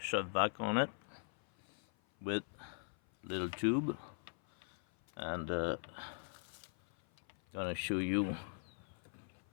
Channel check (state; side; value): silent; right; 51 dB below the other